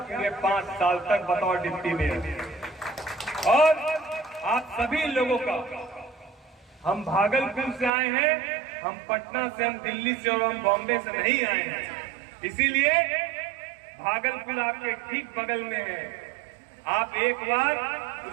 पूरे 5 साल तक बतौर डिप्टी मेयर। और आप सभी लोगों का, हम भागलपुर से आए हैं, हम पटना से, हम दिल्ली से और हम बॉम्बे से नहीं आए हैं, इसीलिए भागलपुर आपके ठीक बगल में है। आप एक बार,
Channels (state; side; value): drops out; left; at 7.9 s